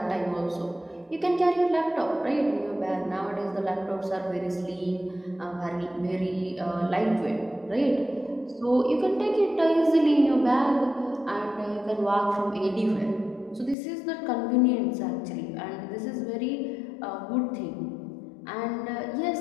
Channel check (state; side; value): drops out; right; at 13.8 s